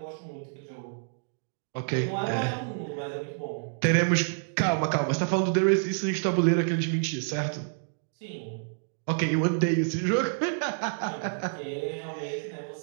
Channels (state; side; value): silent; left; digital silence